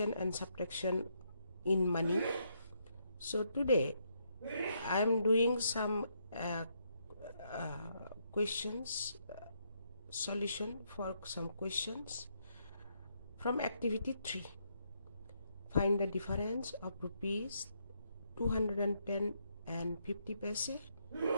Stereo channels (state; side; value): inverted; both; correlation -0.76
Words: and subtraction in money. So today, I am doing some questions, solution for some questions from activity 3. Find the difference of rupees 210 and 50 paise